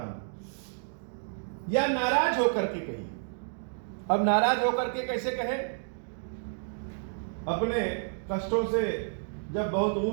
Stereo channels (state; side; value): silent; left; digital silence